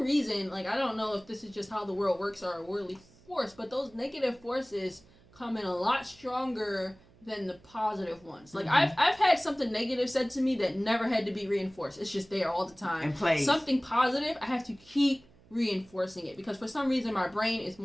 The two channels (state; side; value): noise; right; hum, 27 dB below the sound